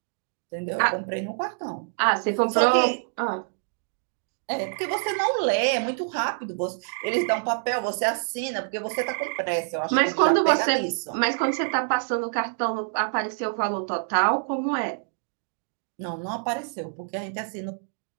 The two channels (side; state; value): left; silent; digital silence